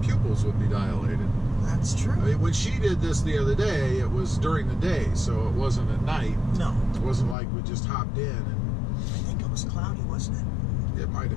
pupils would be dilated. That's true. I mean, when she did this the other day, it was during the day, so it wasn't at night. No. It wasn't like we just hopped in and... I think it was cloudy, wasn't it? It might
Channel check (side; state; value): right; drops out; at 7.4 s